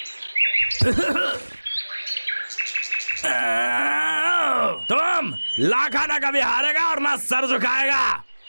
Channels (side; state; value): both; inverted; correlation -1.00